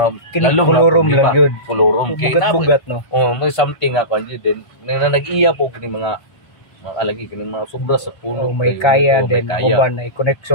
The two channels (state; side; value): late; right; 1.5 ms